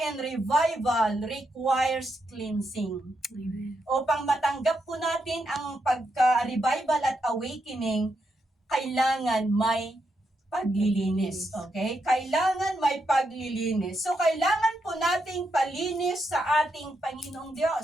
revival requires cleansing. Upang matanggap po natin ang pagka-revival at awakening, kailangan may paglilinis. Okay? Kailangan may paglilinis. So, kailangan po nating palinis sa ating Panginoong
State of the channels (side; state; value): both; normal; correlation 0.82